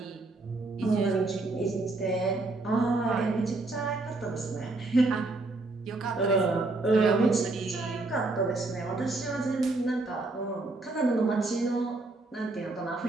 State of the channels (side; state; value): left; quieter; 3.2 dB